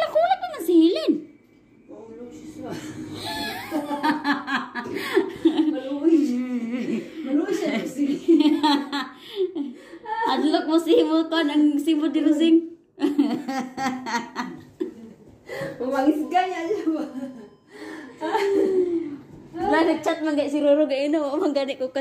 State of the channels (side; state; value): both; identical; correlation 1.00